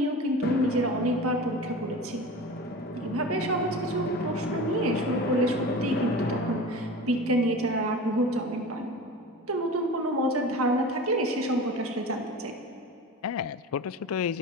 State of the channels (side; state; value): both; normal; correlation 0.33